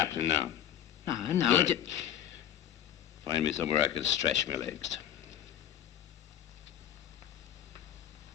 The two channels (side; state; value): right; quieter; 10.5 dB